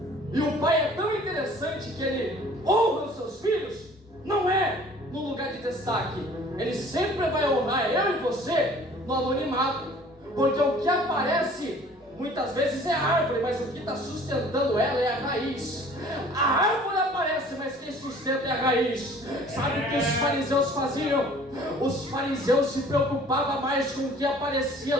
e o pai é tão interessante que ele honra os seus filhos, não é no lugar de destaque. Ele sempre vai honrar eu e você no anonimato, porque o que aparece muitas vezes é a árvore, mas o que está sustentando ela é a raiz. A árvore aparece, mas quem sustenta é a raiz. Sabe o que os fariseus faziam? Os fariseus se preocupavam mais com o que aparecia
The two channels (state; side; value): normal; both; correlation 0.51